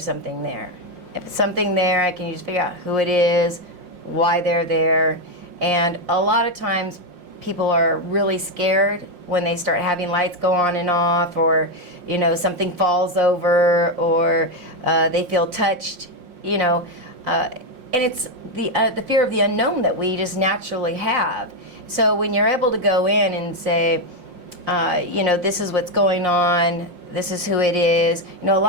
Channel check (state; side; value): late; left; 5.6 ms